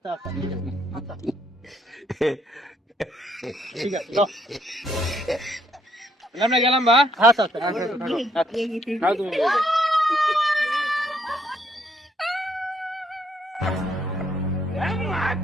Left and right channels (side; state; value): both; normal; correlation 0.70